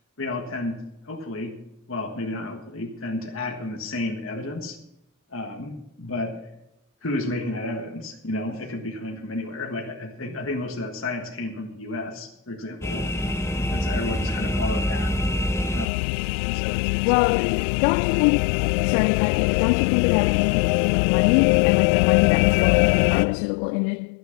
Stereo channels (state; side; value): drops out; right; at 15.9 s